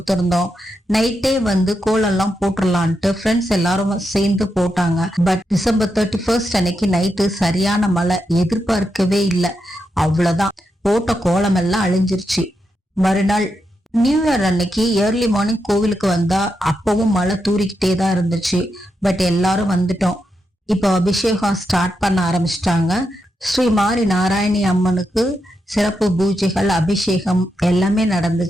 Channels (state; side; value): normal; both; correlation 0.85